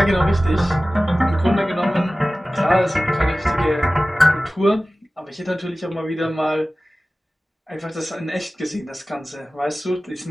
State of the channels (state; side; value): normal; both; correlation 0.97